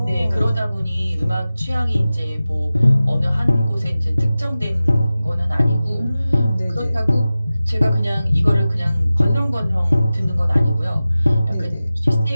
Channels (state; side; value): inverted; both; correlation -0.95